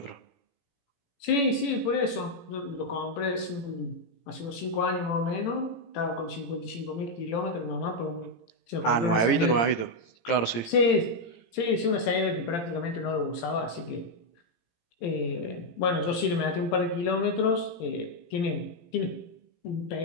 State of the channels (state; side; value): late; right; 17 ms